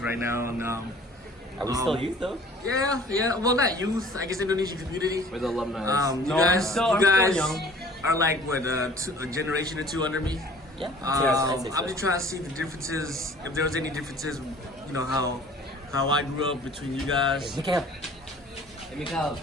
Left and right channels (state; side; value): normal; both; correlation 0.50